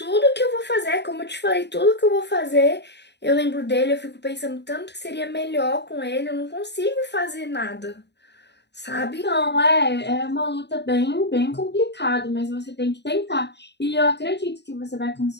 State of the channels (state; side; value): late; right; 0.50 ms